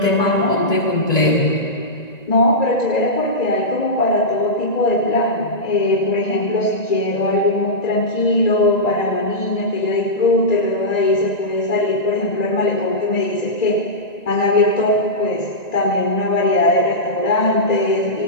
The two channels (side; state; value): right; late; 1.9 ms